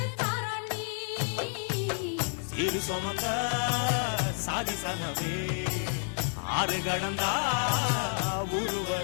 சிறு சுமந்த சாதி சனவே ஆறு கடந்தா ஊரு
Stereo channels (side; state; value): right; silent; 58 dB below the other